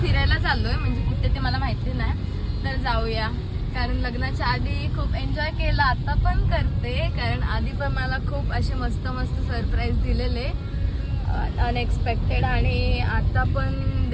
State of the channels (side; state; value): both; identical; correlation 1.00